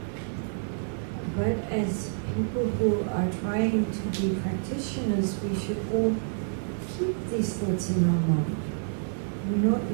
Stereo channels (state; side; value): silent; left; digital silence